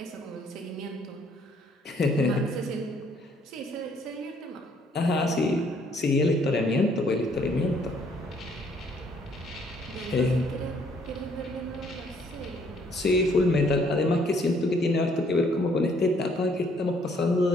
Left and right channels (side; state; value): both; normal; correlation 0.65